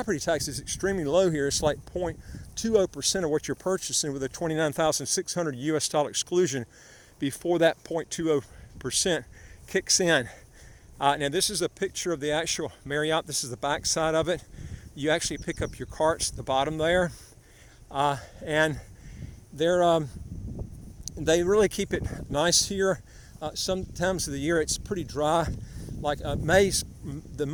tax is extremely low here. It's like 0.20% of what you're purchasing, with a $29,600 US exclusion before that 0.20% kicks in. Now this is a picture of the actual Marriott. This is the back side of it. You actually pick up your carts at the bottom there, and they really keep it nice here. Sometimes of the year it's pretty dry. Like the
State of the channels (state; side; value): identical; both; correlation 1.00